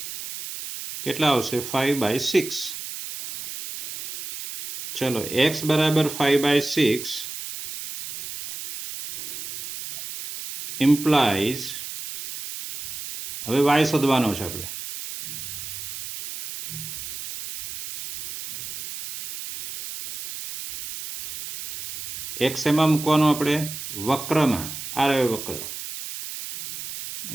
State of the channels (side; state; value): right; noise; hiss, 9 dB below the sound